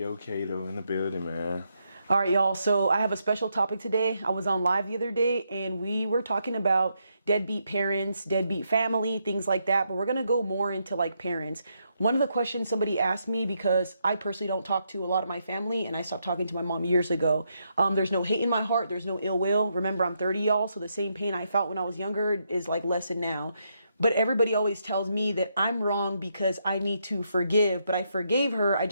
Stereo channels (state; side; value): inverted; both; correlation -0.79